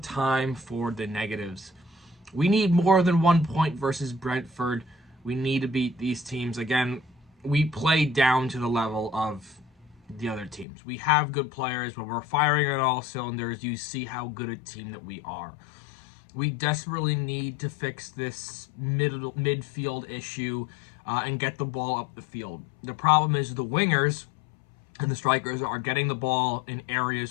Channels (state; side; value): drops out; right; at 10.7 s